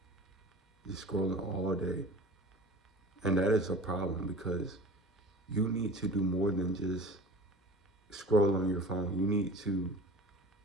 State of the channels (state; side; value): normal; both; correlation 0.39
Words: Just scrolling all day. And that is a problem because you need to do more than just scroll on your phone. You need to